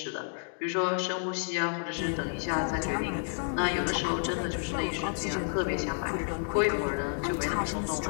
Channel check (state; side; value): silent; right; 57 dB below the other